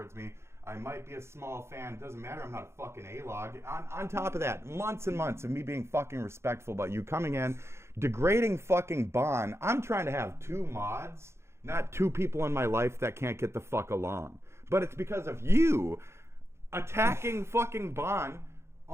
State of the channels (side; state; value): left; late; 0.13 ms